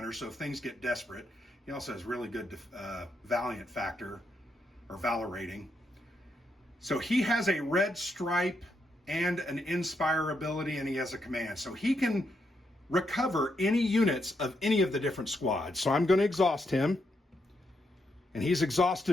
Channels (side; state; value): both; normal; correlation 0.80